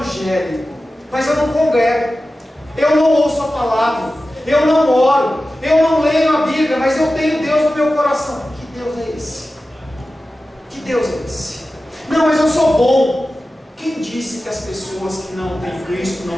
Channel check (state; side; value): normal; both; correlation 0.94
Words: mas eu não congrego, eu não ouço a palavra, eu não oro, eu não leio a Bíblia, mas eu tenho Deus no meu coração. Que Deus é esse? Que Deus é esse? Não, mas eu sou bom. Quem disse que as pessoas que não têm Cristo não